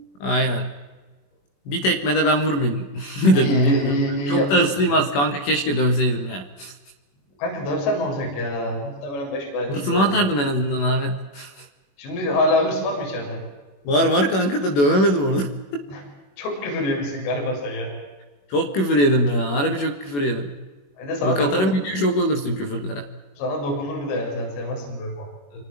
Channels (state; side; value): late; right; 21 ms